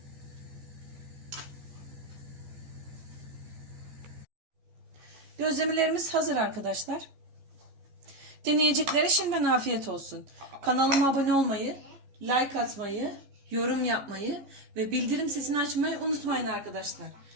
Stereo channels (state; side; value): late; left; 15 ms